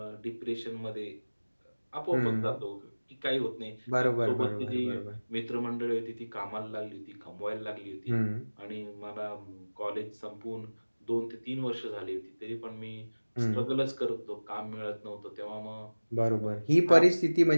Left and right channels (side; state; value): both; inverted; correlation -1.00